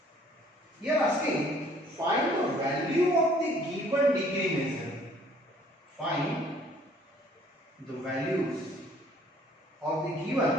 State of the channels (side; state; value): both; normal; correlation 0.58